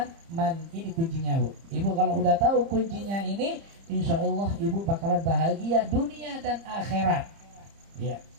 ini kuncinya, Bu. Ibu kalau udah tahu kuncinya ini, insya Allah ibu bakalan bahagia dunia dan akhirat. Ya.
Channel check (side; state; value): left; late; 30 ms